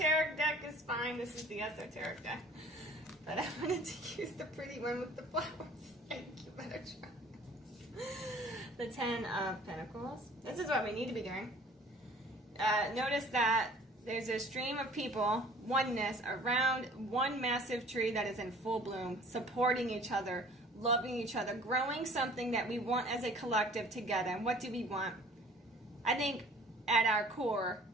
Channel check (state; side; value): normal; both; correlation 0.50